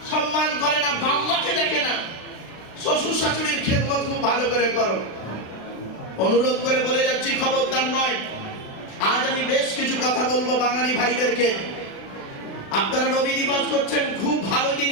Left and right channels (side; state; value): right; late; 36 ms